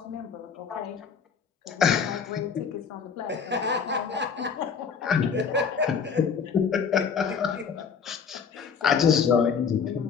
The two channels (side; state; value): right; quieter; 6.3 dB